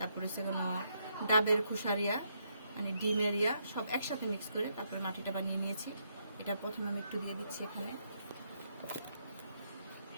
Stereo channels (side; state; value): both; inverted; correlation -0.76